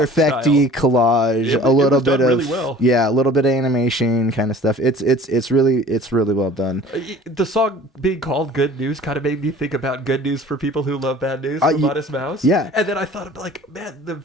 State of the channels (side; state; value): both; normal; correlation 0.46